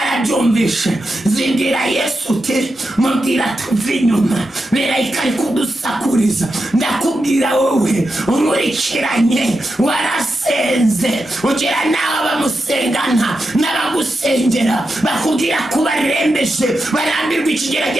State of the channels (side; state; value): both; normal; correlation 0.88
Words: zibwira Yesu uti mubwira tuve inyuma, berayika ari kudusakuriza. ndakubwira wowe unkurikiranye warasenze ugira nawe bamusengana n'abagusengera bakubwira ko barembeje, barambirwa